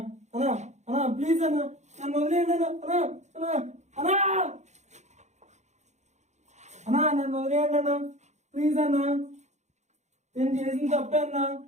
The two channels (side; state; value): left; late; 0.33 ms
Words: అన్నా అన్నా ప్లీజ్ అన్నా నన్ను వదిలేయండి అన్నా అన్నా అన్నా అన్నా నన్ను వదిలేయండి అన్నా ప్లీజ్ అన్నా నేను చేసిన తప్పే అన్నా